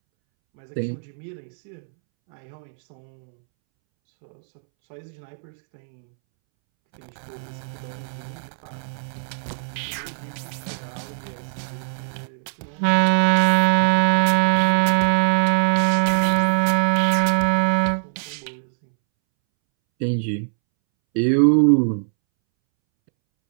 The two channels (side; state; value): left; silent; 64 dB below the other